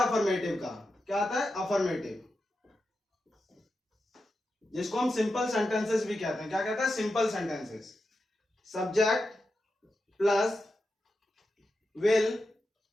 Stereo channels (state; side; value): normal; both; correlation 0.89